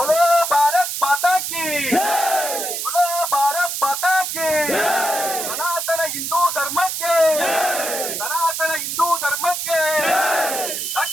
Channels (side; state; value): right; noise; hiss, 3 dB below the sound